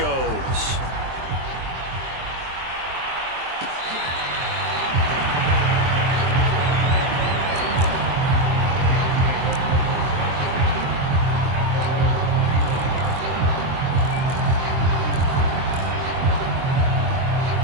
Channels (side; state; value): left; late; 23 ms